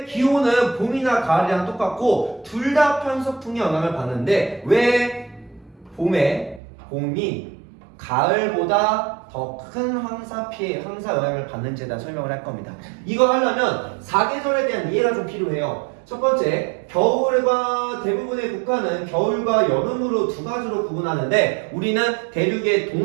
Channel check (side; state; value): left; drops out; at 6.6 s